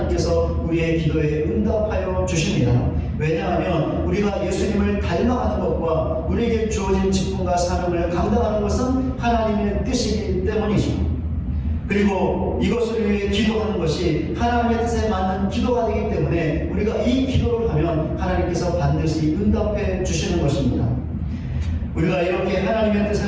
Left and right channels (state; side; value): identical; both; correlation 1.00